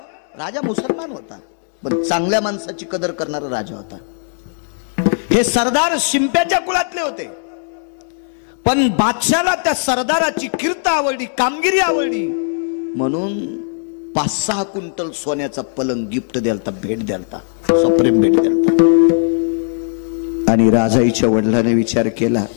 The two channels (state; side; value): silent; right; digital silence